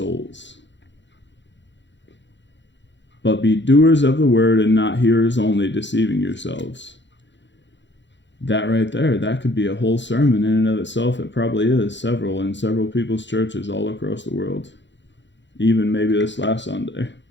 But be doers of the word and not hearers only, deceiving yourselves. That right there, that could be a whole sermon in and of itself. It probably is several in several people's churches all across the world. Even maybe this last Sunday.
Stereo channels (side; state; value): right; late; 0.53 ms